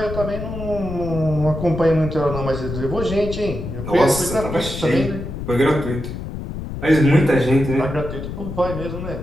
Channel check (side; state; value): left; noise; rumble, 7 dB below the sound